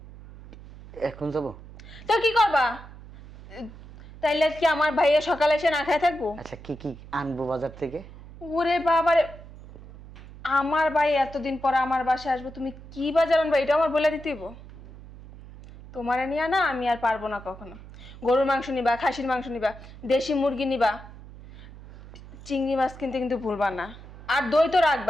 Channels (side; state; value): right; noise; hum, 17 dB below the sound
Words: এখন যাবো? তো কি করবা? তাইলে কি আমার ভাইয়া সকালে এসে না খায় থাকবো? আচ্ছা, কি কি আনবো বাজার থেকে? ওরে বাবারে, আমার ভাই এতদিন পর আমার বাসায় আসবে, তুমি কি বাজার আনবা এটা আমার বলে দিতে হইব? তোমারে নিয়ে না আমি আর পারবো না কখনো। গরুর মাংস নিবা, খাসির মাংস নিবা, দেশি মুরগি নিবা, চিংড়ি মাছ কিনতে কিন্তু ভুলবা না। আর দই তো